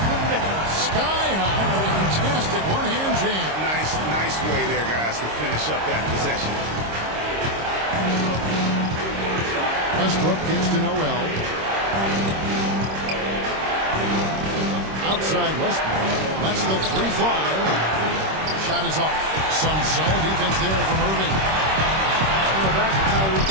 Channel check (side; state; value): left; late; 26 ms